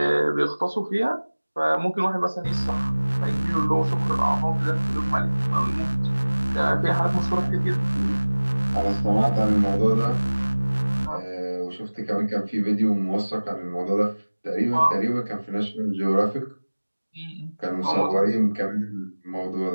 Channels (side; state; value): both; inverted; correlation -1.00